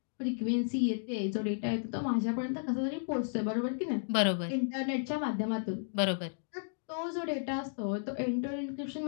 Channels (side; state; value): right; silent; digital silence